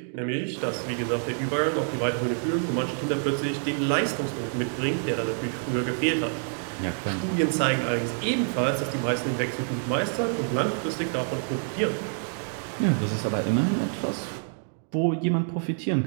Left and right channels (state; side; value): silent; left; 60 dB below the other